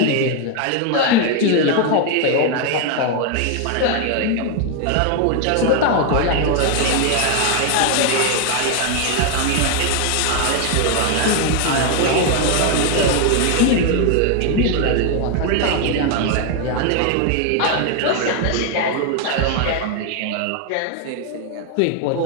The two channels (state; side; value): different; both; correlation 0.01